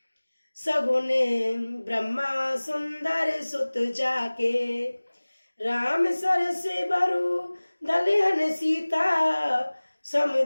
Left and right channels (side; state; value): both; inverted; correlation -1.00